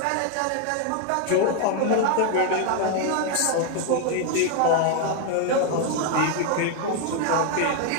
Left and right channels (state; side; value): different; both; correlation 0.01